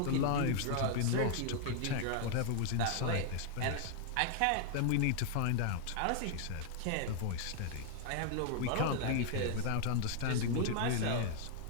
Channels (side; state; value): both; different; correlation 0.00